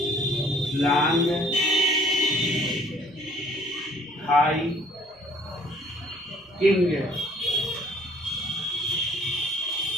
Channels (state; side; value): normal; both; correlation 0.57